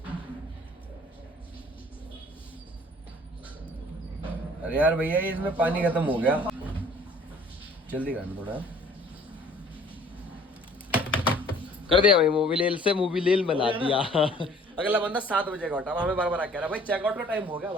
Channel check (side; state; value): both; normal; correlation 0.54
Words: अरे यार भैया ये इसमें पानी खत्म हो गया, जल्दी करना थोड़ा। कर दिया भाई, मोबिलेल से मोबिलेल बना दिया। अगला बंदा 7 बजे का उठा, हमें बार बार कह रहा भाई चेकआउट का टाइम हो गया।